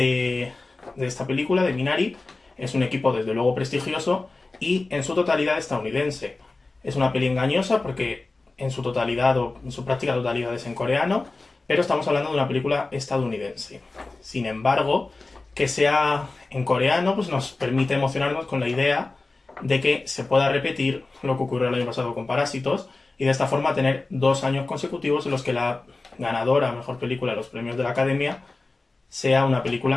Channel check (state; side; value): quieter; right; 3.4 dB